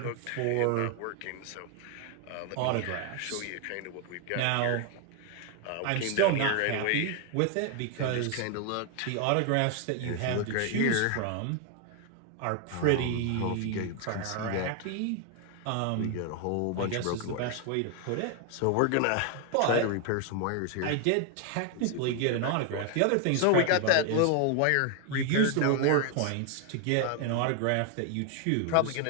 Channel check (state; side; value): different; both; correlation 0.00